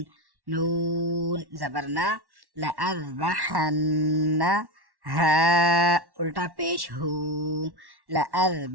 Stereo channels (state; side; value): late; left; 1.1 ms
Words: نون زبرنا لأذبحن ہا الٹا پیش ہو